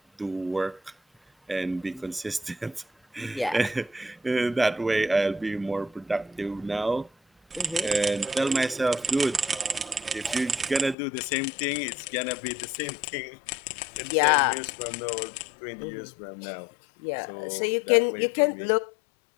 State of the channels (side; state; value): right; drops out; at 11.0 s